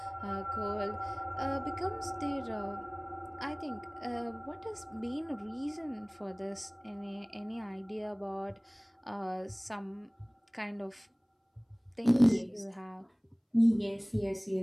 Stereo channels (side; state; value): both; identical; correlation 1.00